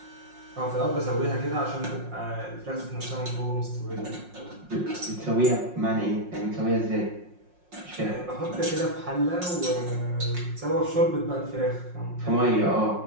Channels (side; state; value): left; late; 5.6 ms